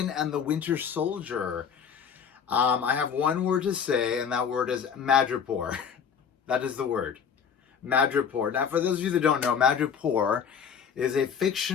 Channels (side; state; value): right; quieter; 7.2 dB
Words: and the Winter Soldier. I have one word to say, and that word is Madripoor. That is the word. Madripoor. Now, for those of you that don't know, Madripoor is a